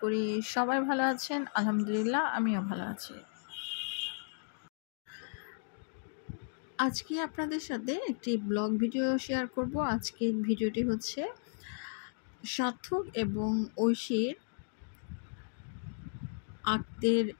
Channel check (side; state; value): right; silent; digital silence